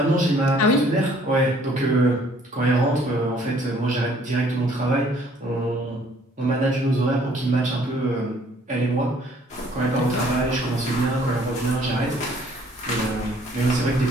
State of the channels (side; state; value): both; normal; correlation 0.59